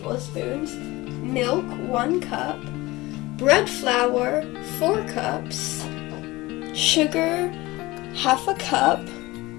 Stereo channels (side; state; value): right; quieter; 20.3 dB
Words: milk, 1 cup, bread flour, 4 cups, sugar, half a cup,